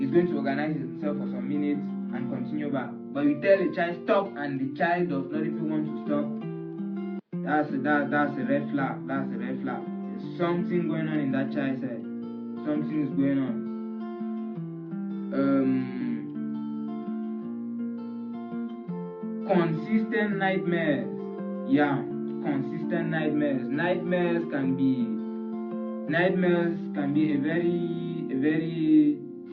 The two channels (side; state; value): both; identical; correlation 1.00